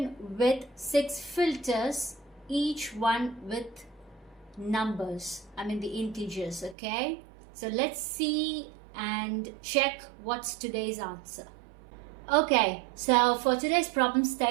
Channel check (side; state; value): left; drops out; at 6.8 s